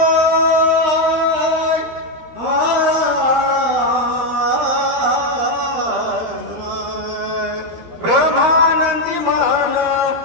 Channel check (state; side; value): late; left; 13 ms